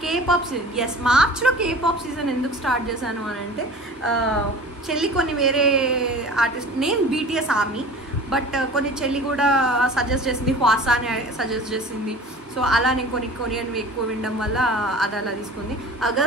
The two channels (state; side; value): normal; both; correlation 0.41